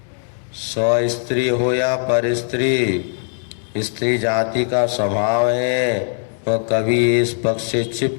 स्व स्त्री हो या पर स्त्री, स्त्री जाति का स्वभाव है, वह कभी इस पक्ष से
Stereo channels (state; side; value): silent; right; digital silence